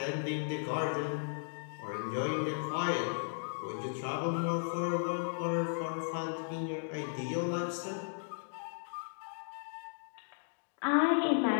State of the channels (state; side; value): silent; right; digital silence